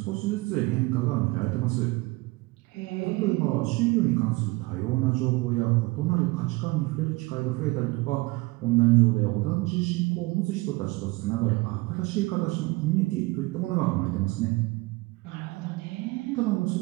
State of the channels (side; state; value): left; quieter; 23.0 dB